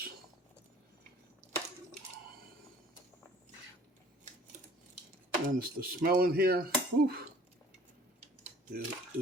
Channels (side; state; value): both; normal; correlation 0.52